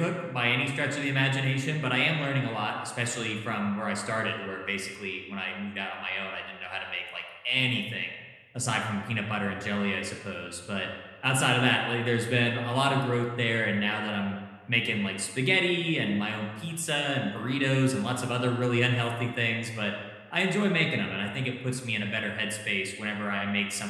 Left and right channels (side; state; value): both; identical; correlation 1.00